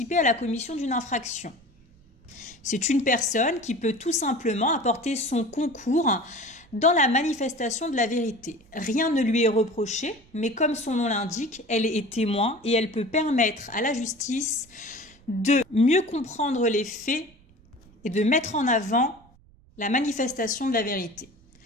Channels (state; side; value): noise; right; rumble, 28 dB below the sound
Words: à la commission d'une infraction. C'est une personne qui peut tout simplement apporter son concours dans la manifestation de la vérité. Rien ne lui est reproché, mais comme son nom l'indique, elle est témoin et elle peut permettre à la justice de mieux comprendre les faits et de mettre en avant la manifestation de la vérité.